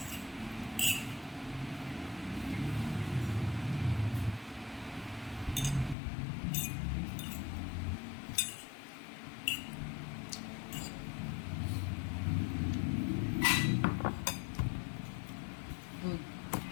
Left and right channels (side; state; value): right; drops out; at 6.0 s